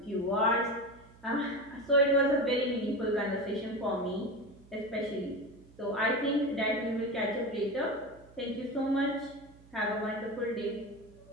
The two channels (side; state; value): right; noise; hum, 24 dB below the sound